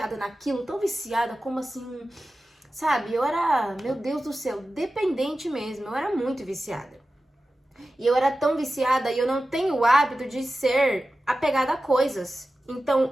naquilo, tão viciada, como assim, sabe? Eu era, meu Deus do céu, dependente mesmo. Eu era muito viciada. E eu era tão viciada e eu não tenho o hábito de ser apegada a coisas.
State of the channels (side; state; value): both; normal; correlation 0.94